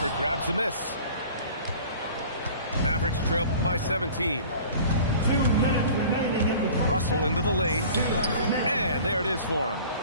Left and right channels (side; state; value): both; inverted; correlation -0.45